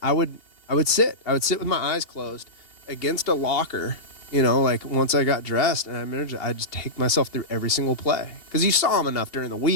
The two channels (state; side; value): late; right; 2.8 ms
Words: I would sit with my eyes closed against a locker. You know, like once I got dressed, and I remember I'd just take myself through every single play because you saw them enough during the